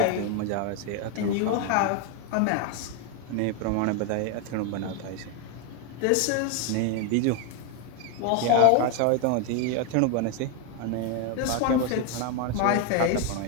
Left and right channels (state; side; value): different; both; correlation 0.01